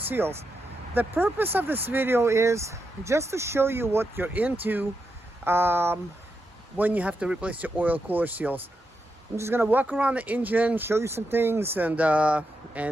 The purpose of this video is just to show you what you're into when you have to replace your oil cooler seals. I'm just gonna walk around the engine, show you some things, and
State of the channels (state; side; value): normal; both; correlation 0.85